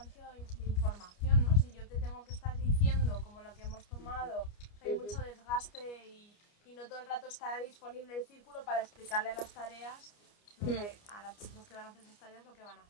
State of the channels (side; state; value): right; late; 29 ms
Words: de información, ¿no? Si yo te tengo que estar diciendo como lo que hemos tomado, hay mucho desgaste y no todo el rato está disponible el círculo para explicarle las tareas, lo que, a las personas que van a hacer esas tareas lo que van a